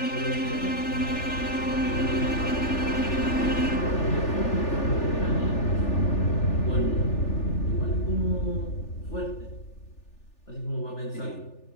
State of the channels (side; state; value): right; late; 3.4 ms